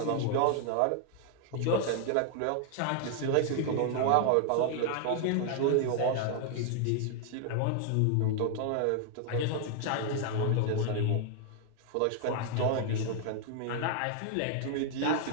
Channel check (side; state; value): both; different; correlation 0.00